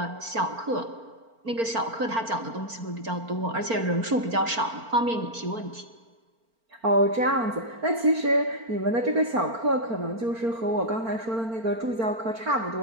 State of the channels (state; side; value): late; left; 4.4 ms